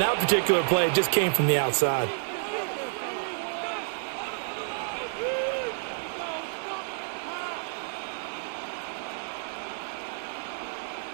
particular play, it just came from the outside.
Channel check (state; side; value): silent; left; digital silence